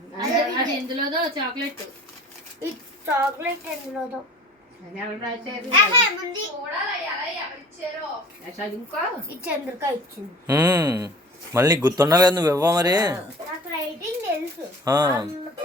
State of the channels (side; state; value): both; normal; correlation 0.44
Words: అది ఎందులోదో చాక్లెట్. ఈ చాక్లెట్ ఎందులోదో ఈ చంద్రిక ఇచ్చింది. మళ్ళీ గుర్తుండాలి కదా, నువ్వు ఇవ్వ మరి. నాకు రైటింగ్ తెలుసు,